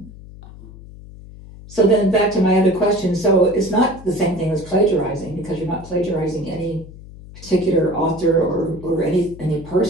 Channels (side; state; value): left; noise; hum, 17 dB below the sound